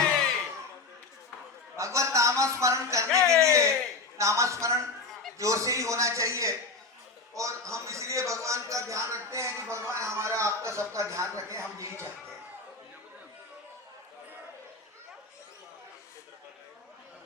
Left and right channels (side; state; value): right; quieter; 3.7 dB